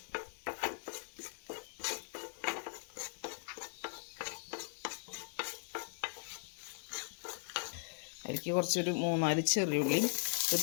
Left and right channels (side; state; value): right; silent; 52 dB below the other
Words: അതിലേക്ക് കുറച്ചൊരു 3-4 ചെറിയുള്ളി, ഒരു